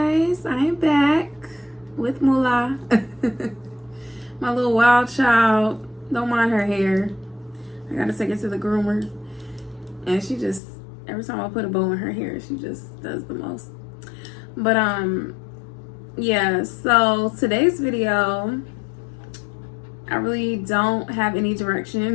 I am back with Moolah. My little wild child. Don't mind her hair. I gotta take it to the groomer. And she just, every time I put a bow in her hair, she just does the most. But yeah, so today's video, I really don't have any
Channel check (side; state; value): right; drops out; at 10.6 s